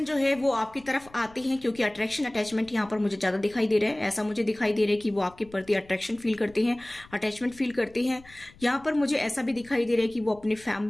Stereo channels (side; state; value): left; noise; rumble, 25 dB below the sound